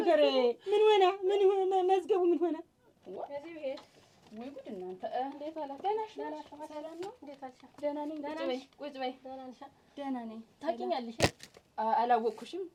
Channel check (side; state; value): both; identical; correlation 1.00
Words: ምን ሆነ? ምን ሆነ? መዝገቡ ምን ሆነ? ከዚህ ቤት ወይ ጉድ እናንተ! እንዴት አላ? ደህና ነሽ? ሰላም ነው? እንዴት አልሻ? ደህና ነኝ። ቁጭ በይ። ደህና ነሽ? ደህና ነኝ። ታውቂኛለሽ? አላወቅኩሽም።